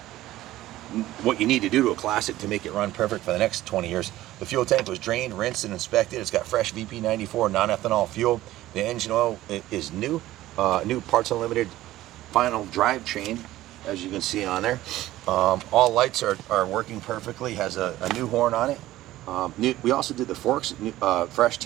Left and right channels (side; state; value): left; quieter; 15.5 dB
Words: you need to do to a classic to make it run perfect for the next 20 years. The fuel tank was drained, rinsed, and inspected. It's got fresh VP94 non-ethanol fuel. The engine oil is new. New Parts Unlimited final drive chain, as you can see on there. All lights are working perfectly. Has a new horn on it. We also did the forks, fresh